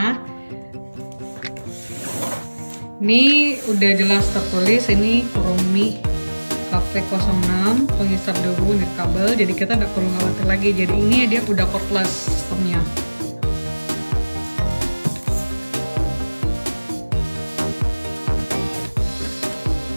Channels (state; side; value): inverted; both; correlation -1.00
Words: Ini udah jelas tertulis ini Kurumi Cafe 06 penghisap debu nirkabel. Jadi kita nggak perlu khawatir lagi. Jadi ini dia udah cordless sistemnya.